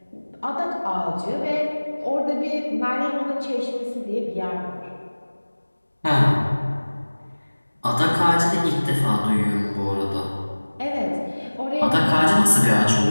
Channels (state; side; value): inverted; both; correlation -1.00